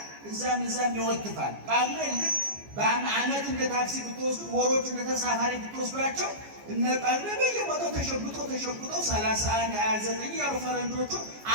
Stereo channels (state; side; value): late; left; 14 ms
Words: እዛም ይወትፋል። ቃሉን ልክ በአመት እንደ ታክሲ ብትወስዱ ወሮቹ እንደ ተሳፋሪ ብትወስዷቸው እነ ጳጉሜ በየቦታው ተሸጉጠው 31 29 ያሉ ፈረንጆቹ